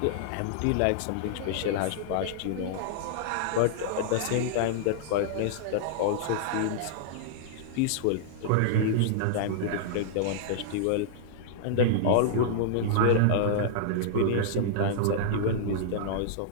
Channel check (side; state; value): both; different; correlation -0.02